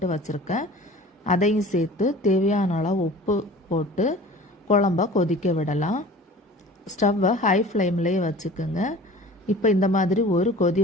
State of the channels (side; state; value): both; normal; correlation 0.43